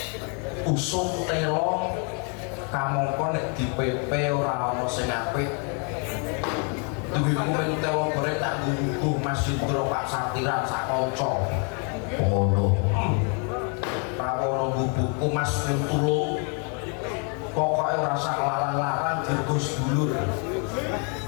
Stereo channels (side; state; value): right; quieter; 38.1 dB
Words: usum telo kamangka nek dipepe ora ana sing apik duwe kuwen telo gore tak nggubuh Mas Indra Pak Satiran sak kanca ngono prawono nggubuhku Mas Tulung pokoknya ora sak larang-larang dirgus dulur